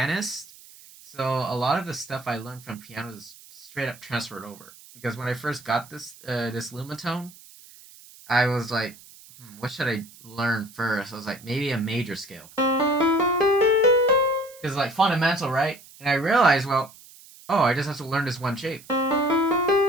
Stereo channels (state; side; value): noise; right; hiss, 21 dB below the sound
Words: So a lot of the stuff I learned from piano is straight up transferred over. Because when I first got this Lumatone, I was like, what should I learn first? I was like, maybe a major scale. Because like fundamental, right? And I realized, well, oh, I just have to learn this one shape. And